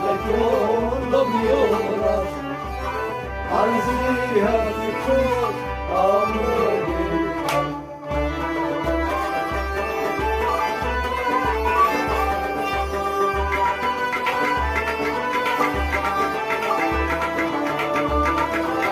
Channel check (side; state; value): both; identical; correlation 1.00